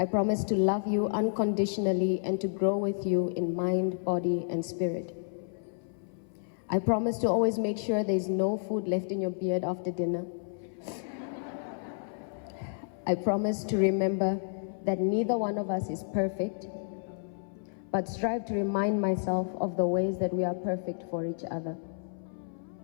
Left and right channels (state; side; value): silent; right; 57 dB below the other